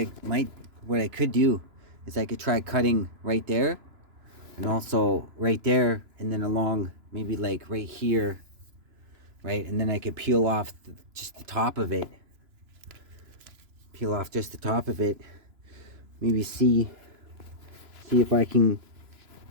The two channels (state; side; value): late; left; 3.0 ms